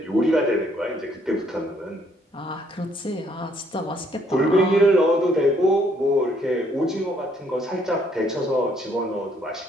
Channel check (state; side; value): normal; both; correlation 0.67